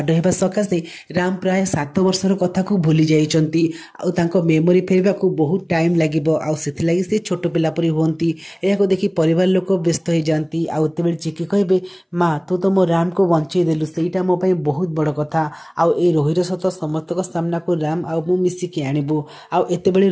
ହେବା ସକାଶେ ରାମ ପ୍ରାୟ 7 ବର୍ଷର କଥାକୁ ଭୁଲି ଯାଇଛନ୍ତି ଆଉ ତାଙ୍କ ମେମୋରି ଫେରିବାକୁ ବହୁତ ଟାଇମ୍ ଲାଗିବ ଆଉ ସେଥିଲାଗି ସେ ଛୋଟ ପିଲା ପରି ହୁଅନ୍ତି। ଏହାକୁ ଦେଖି ପରିବାର ଲୋକ ବ୍ୟସ୍ତ ହେଇଯାଆନ୍ତି ଆଉ ଏତେବେଳେ ଚିକି କହିବେ ମା ତୁ ତ ମୋ ରାମକୁ ବଞ୍ଚେଇ ଦେଲୁ, ସେଇଟା ମୋ ପାଇଁ ବହୁତ ବଡ଼ କଥା। ଆଉ ଏ ରୋହିର ସତ ସମସ୍ତଙ୍କ ସାମ୍ନାକୁ ରାମ ଆଉ ମୁଁ ମିଶିକି ଆଣିବୁ। ଆଉ ଏତେବେଳେ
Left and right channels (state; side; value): identical; both; correlation 1.00